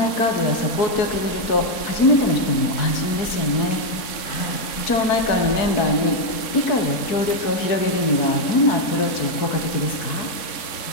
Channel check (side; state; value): right; late; 3.6 ms